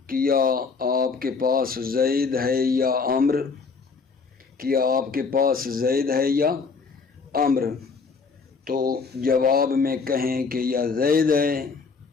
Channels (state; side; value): quieter; right; 4.9 dB